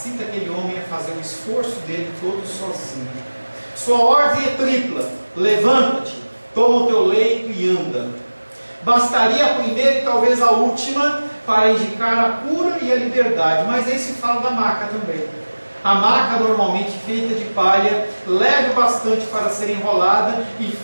aquele homem a fazer o esforço dele todo sozinho. Sua ordem é tripla, levanta-te, toma o teu leito e anda. Bastaria a primeira e talvez a última para indicar a cura e a liberdade, mas aí se fala da maca também. A maca, normalmente feita de palha, leve bastante para ser enrolada e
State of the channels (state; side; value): inverted; both; correlation -1.00